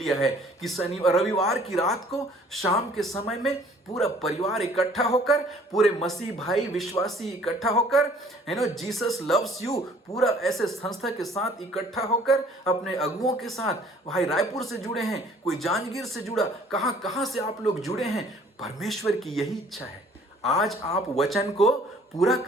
है कि रविवार की रात को शाम के समय में पूरा परिवार इकट्ठा होकर, पूरे मसीह भाई विश्वासी इकट्ठा होकर, जीसस लव्स यू पूरा ऐसे संस्था के साथ इकट्ठा होकर, अपने अगुओं के साथ, भाई रायपुर से जुड़े हैं, कोई जांजगीर से जुड़ा, कहां कहां से आप लोग जुड़े हैं। परमेश्वर की यही इच्छा है, आज आप वचन को पूरा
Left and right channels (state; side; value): normal; both; correlation 0.56